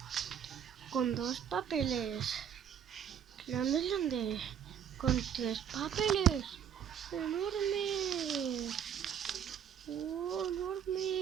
Con dos papeles. Grande. Con tres papeles. Enormes.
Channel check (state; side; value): quieter; left; 8.7 dB